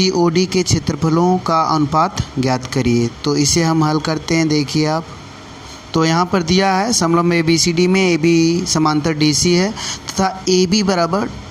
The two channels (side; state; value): both; identical; correlation 1.00